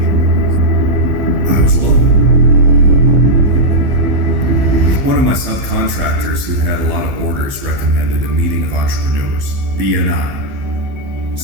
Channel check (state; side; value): late; left; 15 ms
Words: I was alone. One of my subcontractors who had a lot of orders recommended a meeting of entrepreneurs, BNI.